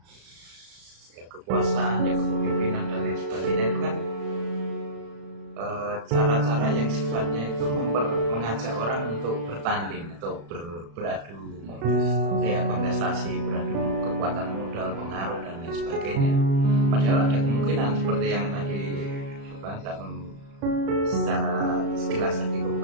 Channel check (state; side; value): late; left; 35 ms